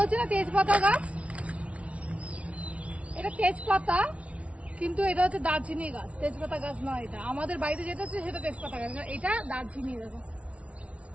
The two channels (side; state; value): left; late; 0.063 ms